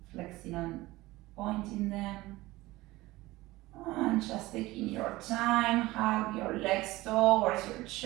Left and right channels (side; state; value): left; quieter; 19.1 dB